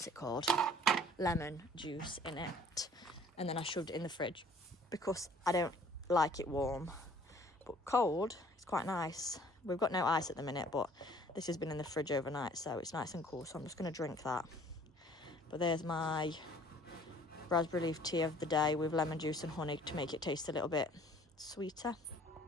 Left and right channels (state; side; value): normal; both; correlation 0.54